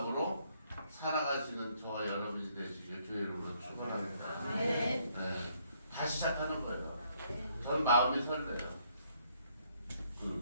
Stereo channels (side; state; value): both; inverted; correlation -0.69